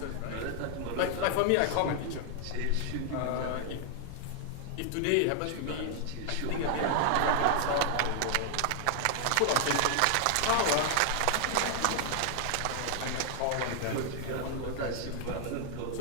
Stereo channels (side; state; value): both; different; correlation 0.00